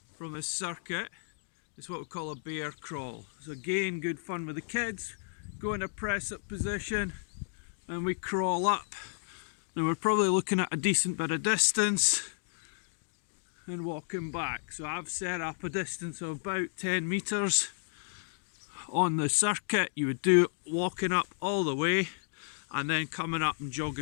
from this circuit is what we call a bear crawl. So again, good fun with the kids. Go in a press up position and we crawl up. Now we're probably looking at a decent bit of distance and walking back. So I've set up a distance of about 10 meters on the circuit. You would do it walking up all the way and then coming up and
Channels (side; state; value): right; silent; digital silence